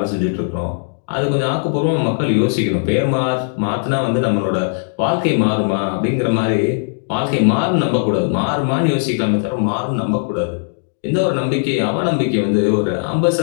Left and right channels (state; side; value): silent; right; digital silence